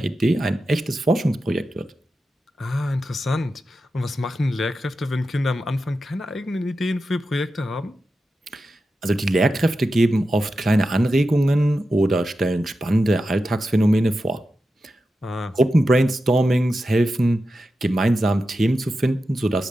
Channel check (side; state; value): both; normal; correlation 0.91